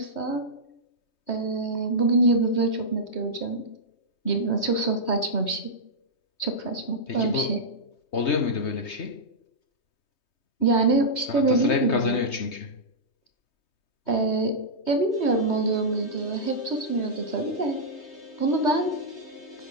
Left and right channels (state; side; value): late; right; 3.2 ms